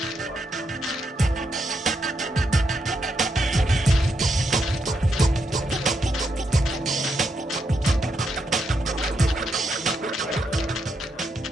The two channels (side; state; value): both; normal; correlation 0.80